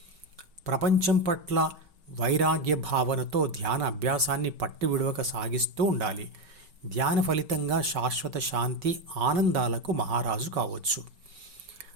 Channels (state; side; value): late; left; 5.3 ms